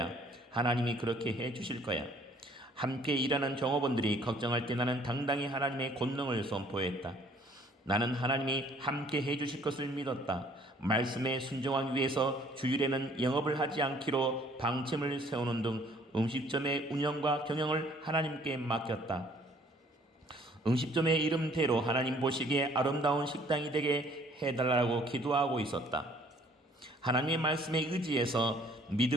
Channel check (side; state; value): both; normal; correlation 0.59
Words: 하나님이 그렇게 해 주실 거야. 함께 일하는 종업원들이 걱정할 때 나는 당당히 하나님의 권능을 선포했다. 나는 하나님이 함께 해주실 것을 믿었다. 말씀에 순종하기 위해서 주일에는 영업을 하지 않기로 방침을 세우는 등 음식점의 운영과 경영을 하나님께 맡겼다. 음식점의 이름대로 하나님 보시기에 아름다운 식당이 되게 해달라고 기도하고 있었다. 하나님의 말씀에 의지해서